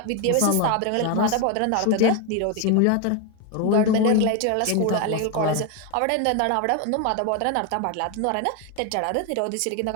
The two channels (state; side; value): different; both; correlation 0.01